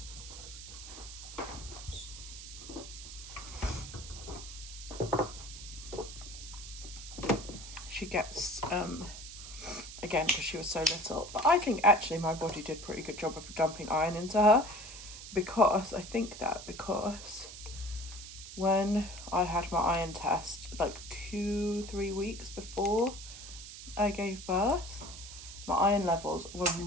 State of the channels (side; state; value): right; noise; hiss, 12 dB below the sound